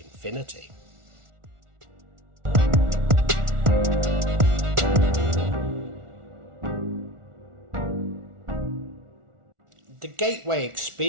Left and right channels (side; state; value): left; late; 1.4 ms